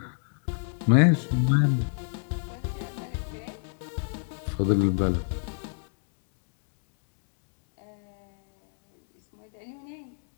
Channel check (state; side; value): silent; right; digital silence